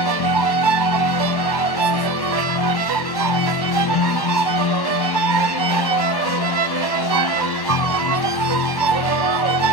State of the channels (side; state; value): right; late; 1.1 ms